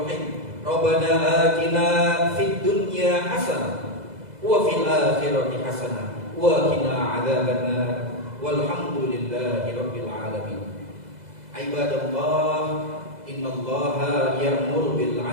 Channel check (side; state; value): left; late; 2.0 ms